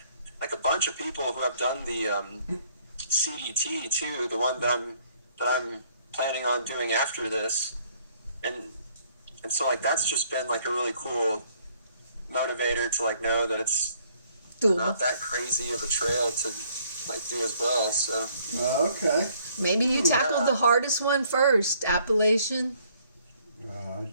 like a bunch of people who have done the CDT too, the one that I'm planning on doing after this, and so like that's just been like a really cool motivator to like know that it's not that crazy of a trail to like do as well. So Okay. Maybe you tackled the hardest one first, Appalachian.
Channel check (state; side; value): inverted; both; correlation -0.64